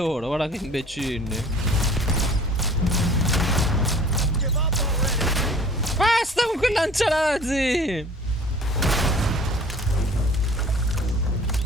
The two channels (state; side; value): normal; both; correlation 0.48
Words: guarda che imbecilli. Basta con quel lanciarazzi!